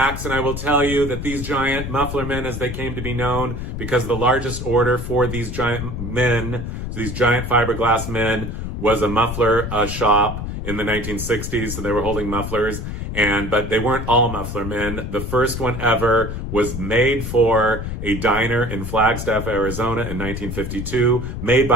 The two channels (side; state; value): left; noise; rumble, 6 dB below the sound